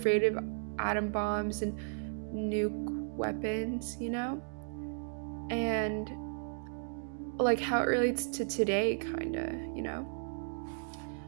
of atom bombs and nuke weapons? And like how it relates to today, kind of.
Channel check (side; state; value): left; silent; digital silence